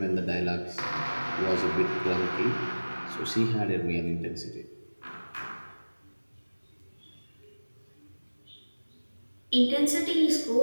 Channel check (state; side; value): inverted; both; correlation -1.00